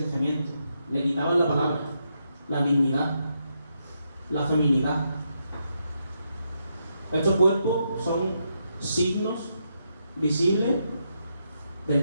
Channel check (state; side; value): inverted; both; correlation -0.81